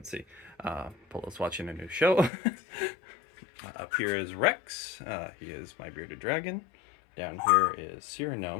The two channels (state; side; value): drops out; right; at 2.3 s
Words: see, Polo's watching a new show. Up here is Rex, he is my bearded dragon. Down here is